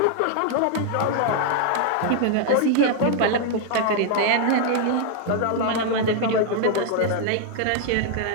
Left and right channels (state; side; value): different; both; correlation 0.00